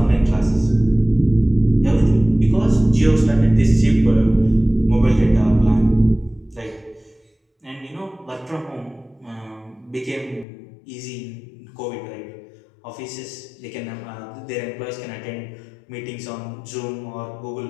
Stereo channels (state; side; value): drops out; right; at 10.5 s